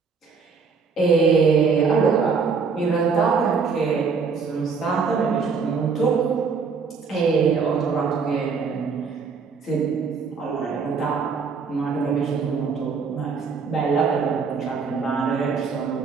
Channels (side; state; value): left; quieter; 5.3 dB